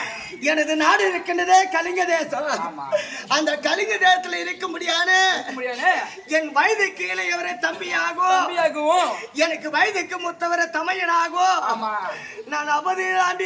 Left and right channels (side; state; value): both; identical; correlation 1.00